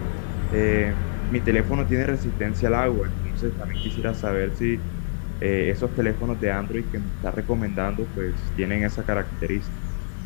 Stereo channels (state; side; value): silent; right; digital silence